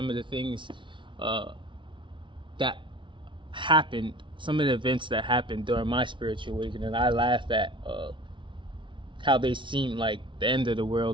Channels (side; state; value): left; late; 0.24 ms